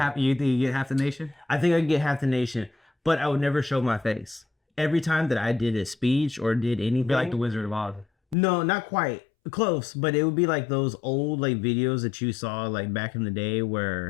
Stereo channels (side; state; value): right; drops out; at 8.3 s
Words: you get half the nation? I think I could get half the nation, but I would never show my face. Every time that I did a speech or did anything, be like the Wizard of Oz. No, not quite close, but it would be like those old videos that you saw back in the day